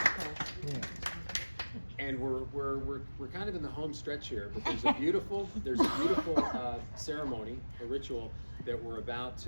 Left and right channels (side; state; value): both; inverted; correlation -1.00